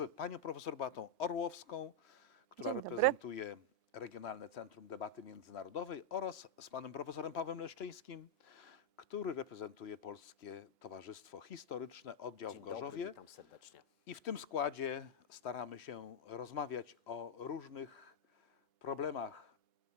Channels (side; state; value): both; normal; correlation -0.02